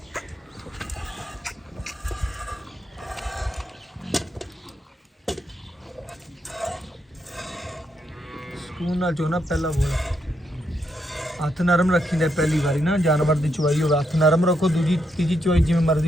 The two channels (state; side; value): normal; both; correlation 0.80